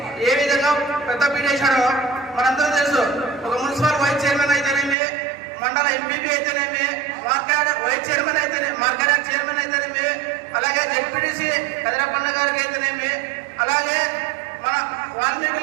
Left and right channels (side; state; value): left; drops out; at 5.0 s